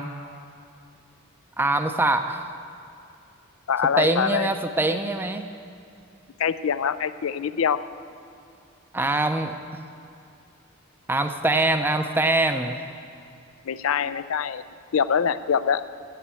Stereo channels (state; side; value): normal; both; correlation 0.12